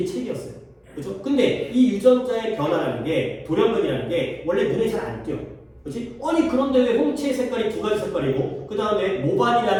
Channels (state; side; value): identical; both; correlation 1.00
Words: 책이었어요. 그렇죠? 근데 이 유전자의 변화라는 게 돌연변이라는 게 원래 눈에 잘 안 띄어. 그렇지? 아니 그런데 왜 홍채의 색깔이 두 가지 색깔이고 그 다음에